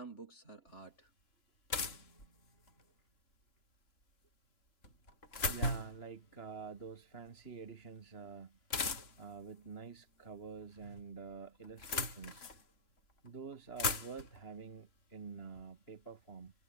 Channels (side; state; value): right; late; 3.0 ms